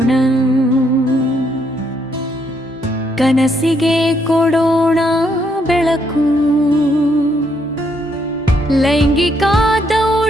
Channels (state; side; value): normal; both; correlation 0.73